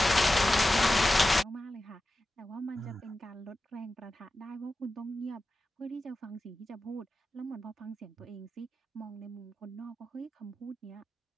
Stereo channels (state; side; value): normal; both; correlation 0.93